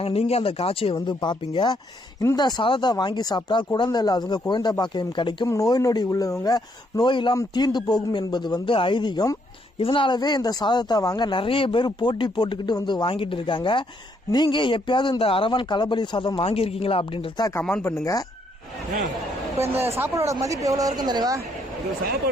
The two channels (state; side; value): normal; both; correlation 0.72